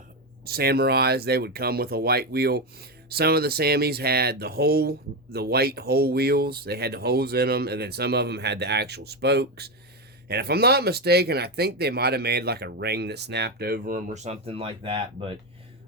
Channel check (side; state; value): both; normal; correlation 0.12